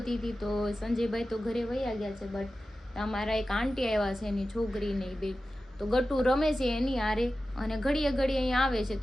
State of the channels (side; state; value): both; normal; correlation 0.94